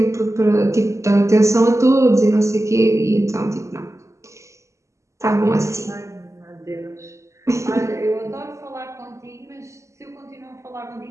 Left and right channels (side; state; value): left; late; 0.14 ms